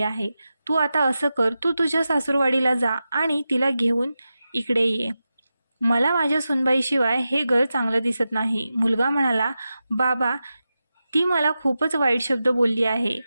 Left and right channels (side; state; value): both; inverted; correlation -0.92